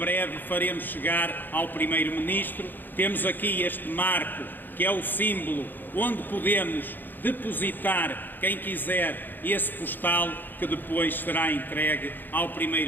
faremos chegar ao Primeiro-Ministro. Temos aqui este marco, que é o símbolo onde podemos depositar, quem quiser, esse postal que depois será entregue ao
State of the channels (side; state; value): right; late; 0.091 ms